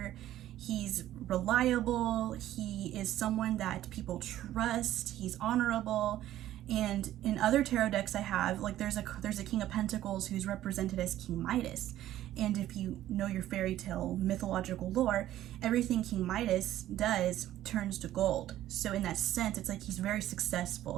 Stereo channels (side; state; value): left; quieter; 13.3 dB